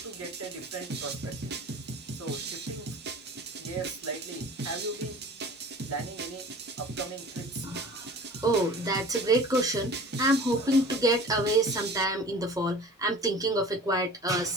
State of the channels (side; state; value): both; normal; correlation 0.43